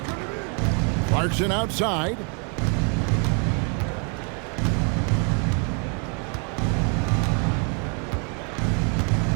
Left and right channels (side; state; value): left; quieter; 38.2 dB